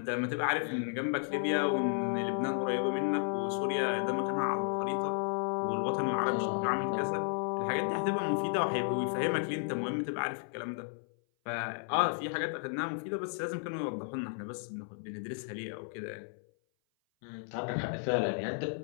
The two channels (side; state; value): right; silent; 56 dB below the other